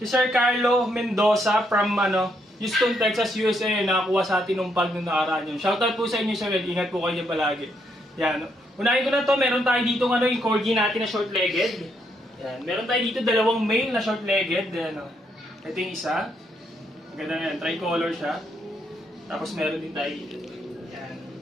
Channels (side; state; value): both; normal; correlation 0.75